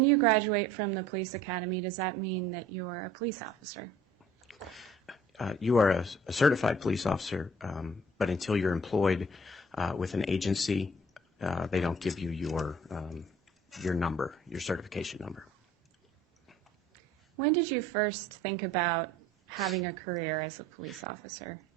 you graduate from the police academy, does that mean that you're a police officer? You are a certified police officer, but until you're employed with an agency, they don't give you your number, your certification number. When did you first think about having a career as a police officer?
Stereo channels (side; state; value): both; normal; correlation 0.53